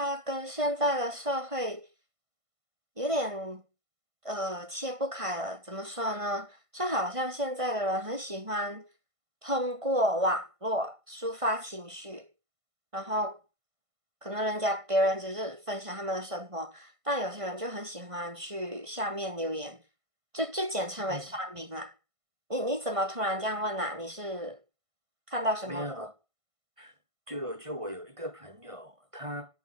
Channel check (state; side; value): late; left; 1.5 ms